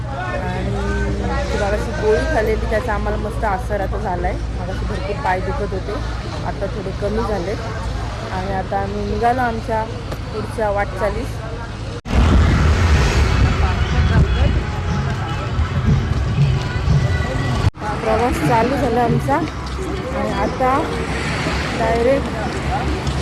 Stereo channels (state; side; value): identical; both; correlation 1.00